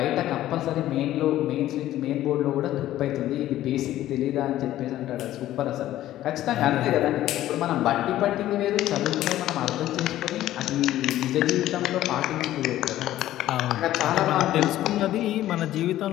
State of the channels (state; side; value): quieter; right; 13.8 dB